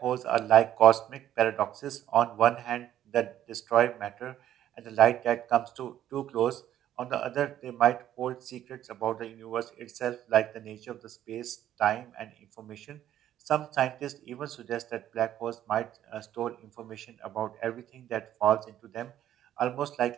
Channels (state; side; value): quieter; left; 11.7 dB